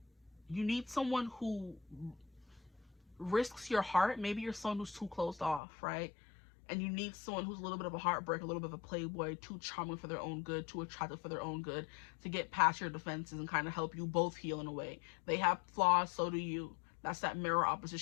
You need someone who risks your heart. Maybe you're someone who's too closed off, right? And you need someone who's a little bit of a heartbreak, a little bit of a playboy, too charming for their own good, too attractive for their own good, to get past your defenses and kind of help you both heal in a way. They have flaws, so do you. That's that mirror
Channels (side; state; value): right; drops out; at 5.6 s